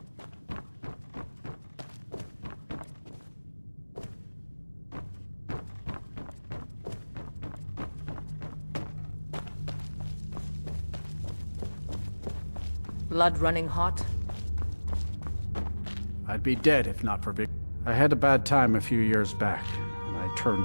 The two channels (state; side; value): inverted; both; correlation -1.00